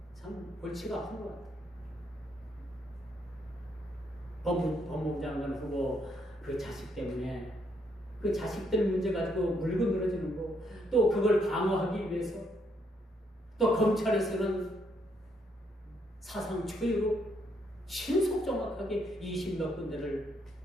참 골치가 아픈 것 같아요. 법무부 장관 후보 그 자식 때문에 그 자식들 문제 가지고 물고 늘어지는 거, 또 그걸 방어하기 위해서 또 검찰에서는 사상 초유로 신속 정확하게 20몇 군데를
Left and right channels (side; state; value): both; normal; correlation 0.73